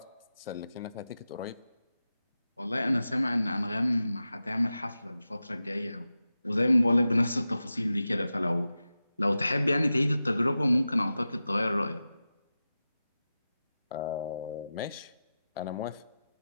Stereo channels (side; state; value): both; inverted; correlation -0.93